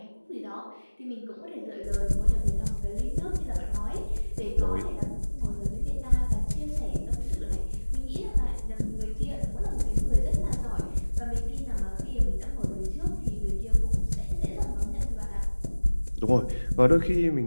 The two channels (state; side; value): inverted; both; correlation -1.00